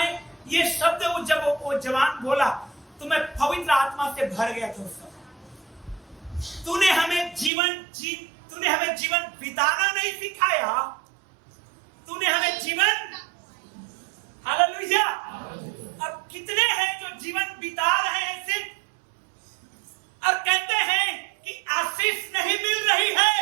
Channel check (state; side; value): drops out; left; at 7.5 s